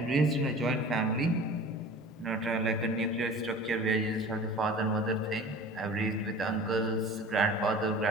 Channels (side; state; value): both; normal; correlation 0.41